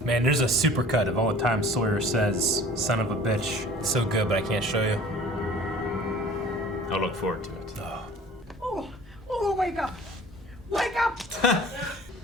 Man, there's a supercut of all the times Sawyer says, son of a bitch. It's so good, but I can't show you. I'll look forward to it. Oh, wake up! Wake up!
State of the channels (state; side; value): normal; both; correlation 0.47